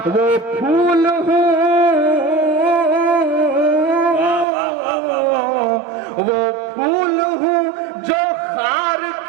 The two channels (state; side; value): drops out; left; at 4.5 s